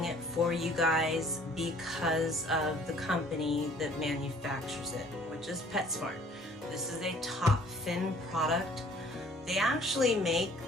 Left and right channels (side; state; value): both; normal; correlation 0.55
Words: it for you guys because of the company that manufactures it, which is PetSmart. This is a top fin product. They actually make